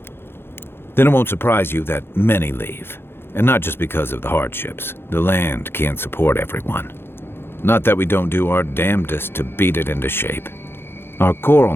Then it won't surprise you that many leave. And not just because of the hardships. The land can't support everyone. Not that we don't do our damnedest to beat it into shape. Our coral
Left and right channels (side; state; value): right; late; 0.11 ms